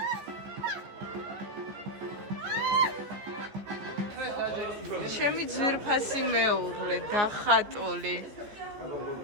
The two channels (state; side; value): late; left; 14 ms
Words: ჩემი ძვირფასი მეუღლე დახატული